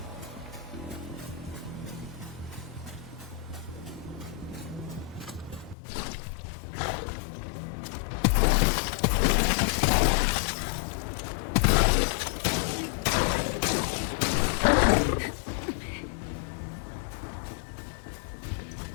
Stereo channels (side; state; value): right; drops out; at 5.8 s